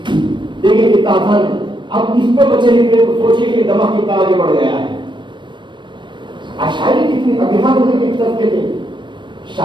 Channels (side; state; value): left; late; 0.23 ms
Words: देखिए कितना आसान है। اب اس پہ بچے نکلے تو سوچیے کہ دماغ کتنا آگے بڑھ گیا ہے. شاعری کتنی ابھیان ہونے کے طبقے تھے.